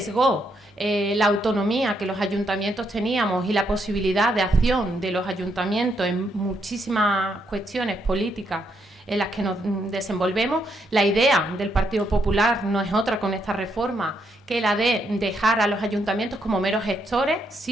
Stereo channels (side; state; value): both; normal; correlation 0.77